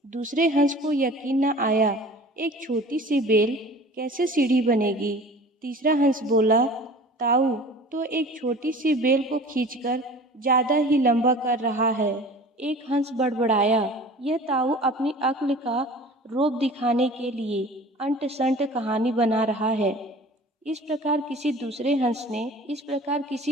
दूसरे हंस को यकीन न आया, एक छोटी सी बेल कैसे सीढ़ी बनेगी? तीसरा हंस बोला, ताऊ तो एक छोटी सी बेल को खींचकर ज्यादा ही लंबा कर रहा है। एक हंस बड़बड़ाया, यह ताऊ अपनी अक्ल का रोब दिखाने के लिए अंट संट कहानी बना रहा है। इस प्रकार किसी दूसरे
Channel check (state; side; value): normal; both; correlation 0.43